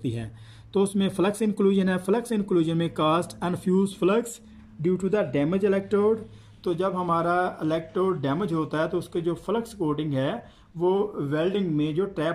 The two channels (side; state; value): both; identical; correlation 1.00